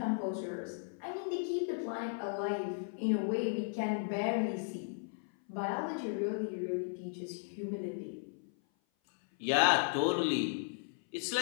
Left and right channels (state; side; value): silent; right; 54 dB below the other